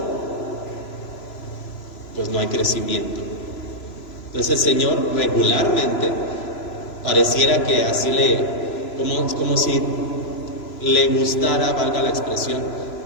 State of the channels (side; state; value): right; late; 3.0 ms